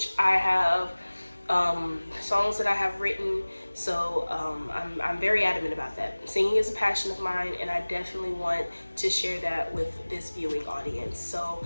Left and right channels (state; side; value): inverted; both; correlation -1.00